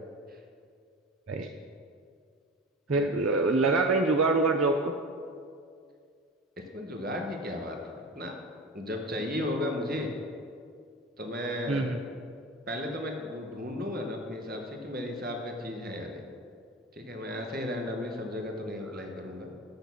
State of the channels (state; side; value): normal; both; correlation 0.31